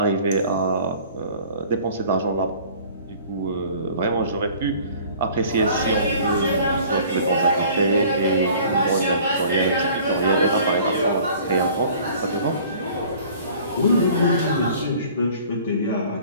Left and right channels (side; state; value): both; inverted; correlation -0.50